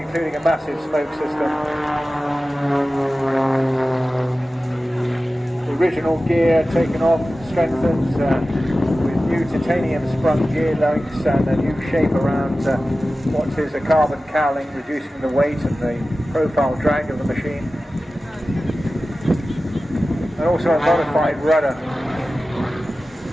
a massive smoke system. The original gear taken off, strengthened with new titanium sprung gear links and a new shape around what is a carbon cowling, reducing the weight and the profile drag of the machine. And also a modified rudder,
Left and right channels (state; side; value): normal; both; correlation 0.95